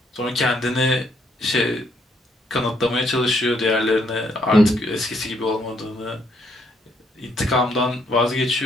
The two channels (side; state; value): both; normal; correlation 0.71